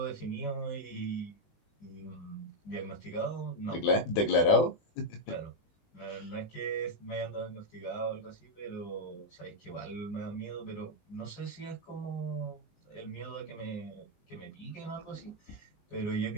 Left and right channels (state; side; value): late; right; 20 ms